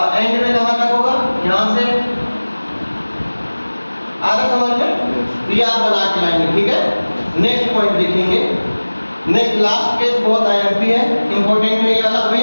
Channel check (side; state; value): both; inverted; correlation -1.00